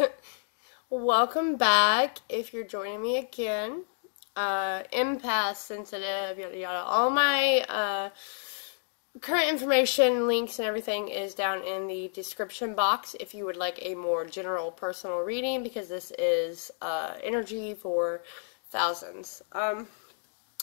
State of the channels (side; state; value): right; silent; digital silence